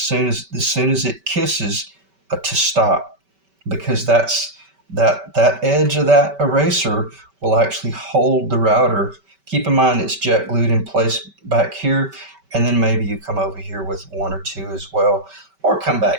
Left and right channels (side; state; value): left; late; 5.2 ms